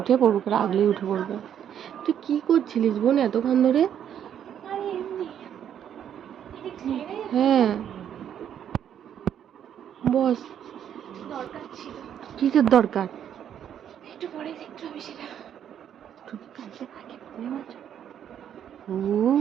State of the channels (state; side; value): quieter; left; 9.4 dB